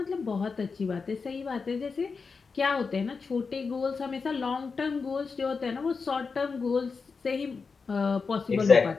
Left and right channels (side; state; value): right; quieter; 4.9 dB